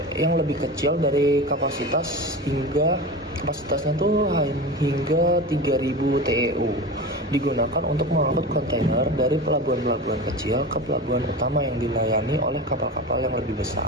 yang lebih kecil dari kapasitasnya tuh hingga 3000 TEU, digunakan untuk mengangkut kontainer dari pelabuhan-pelabuhan kecil ke pelabuhan utama yang dilayani oleh kapal-kapal yang lebih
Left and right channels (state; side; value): normal; both; correlation 0.29